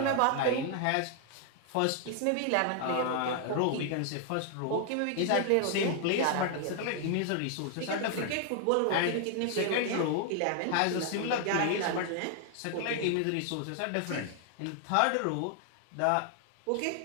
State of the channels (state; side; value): different; both; correlation 0.00